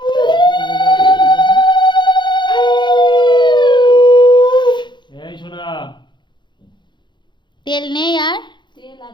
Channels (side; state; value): right; late; 0.22 ms